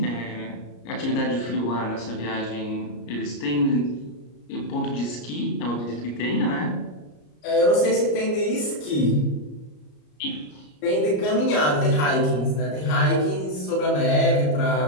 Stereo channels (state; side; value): late; right; 33 ms